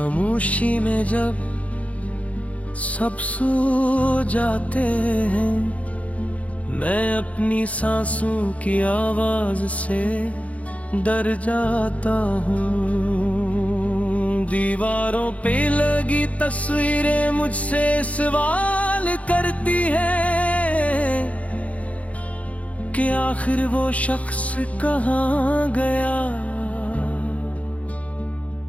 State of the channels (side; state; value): right; late; 0.067 ms